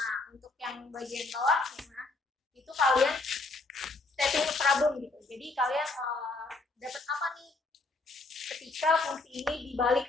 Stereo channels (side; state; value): right; quieter; 3.4 dB